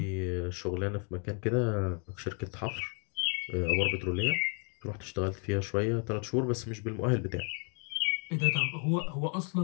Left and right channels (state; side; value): quieter; right; 39.0 dB